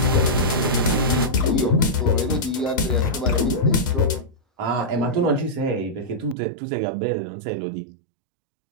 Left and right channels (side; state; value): left; drops out; at 6.4 s